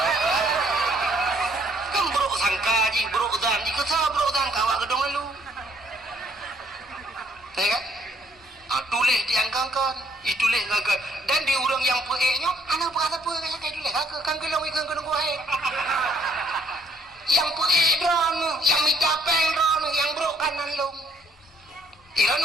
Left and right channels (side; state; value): both; normal; correlation 0.65